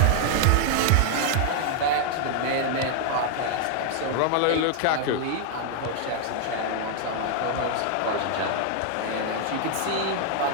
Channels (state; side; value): different; both; correlation 0.00